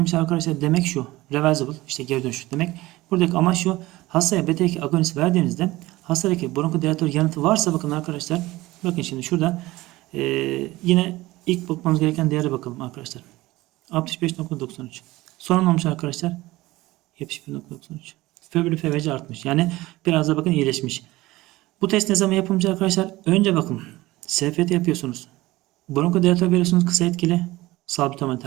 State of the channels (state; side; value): quieter; left; 18.8 dB